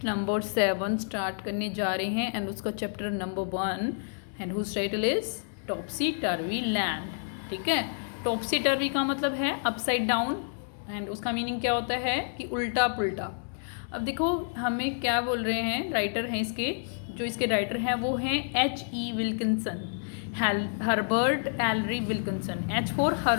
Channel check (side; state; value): right; silent; 58 dB below the other